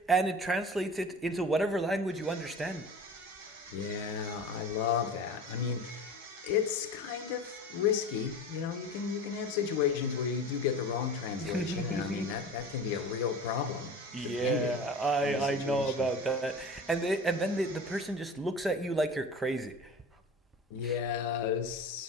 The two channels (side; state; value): both; normal; correlation 0.36